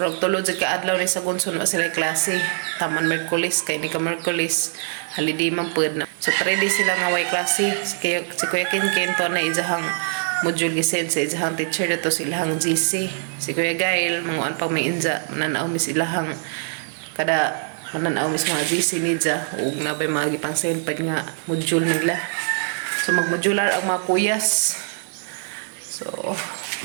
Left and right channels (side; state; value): left; silent; digital silence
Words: tulod sa kaadlaw ni sa gunson wa sila klase. Taman Merkulis kay ni ka Merkulis. Holiday man pud na. So 3 days sila nga why klase. Si Kuya Kinkin to na ijahang module gisen sa ijahang teacher dito silahang GC. Si Kuya Gail manguan pag may inja mananaw mi silahang kada mananaw mis mga GC nidja ug nabay mga gipang pag nga module nila. So magmodular ang mga kuyas. So